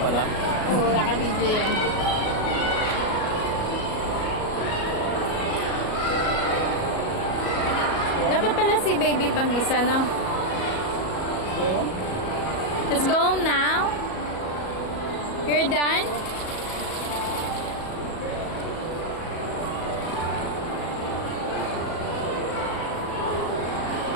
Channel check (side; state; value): right; late; 37 ms